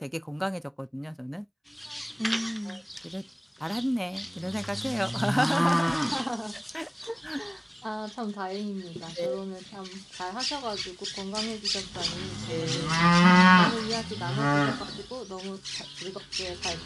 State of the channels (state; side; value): identical; both; correlation 1.00